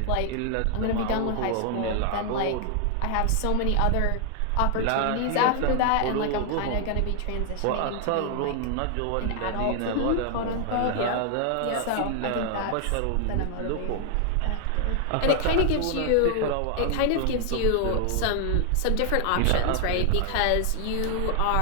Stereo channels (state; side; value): different; both; correlation 0.00